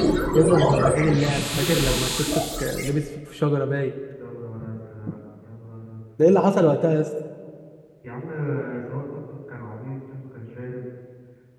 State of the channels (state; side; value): identical; both; correlation 1.00